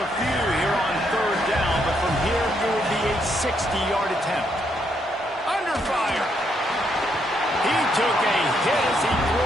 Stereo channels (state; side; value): normal; both; correlation 0.75